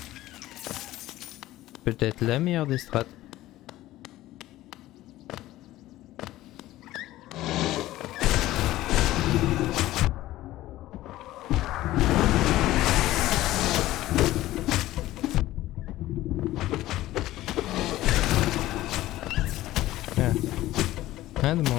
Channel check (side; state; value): right; quieter; 15.8 dB